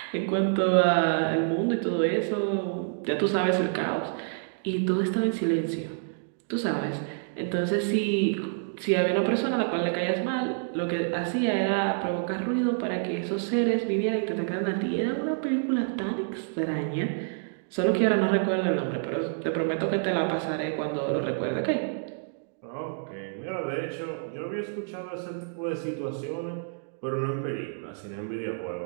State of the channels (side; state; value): left; silent; digital silence